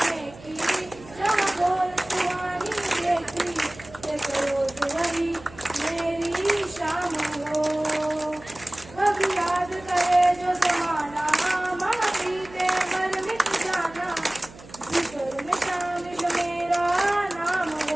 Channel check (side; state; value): right; noise; hum, 19 dB below the sound